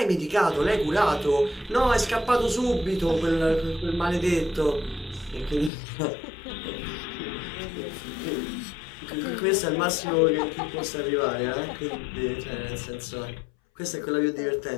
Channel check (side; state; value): right; drops out; at 5.7 s